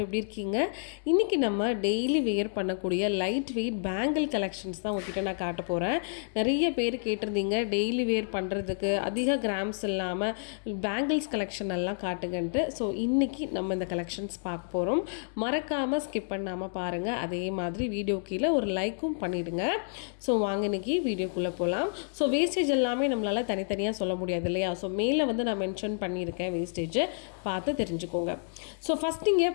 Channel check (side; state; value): right; silent; digital silence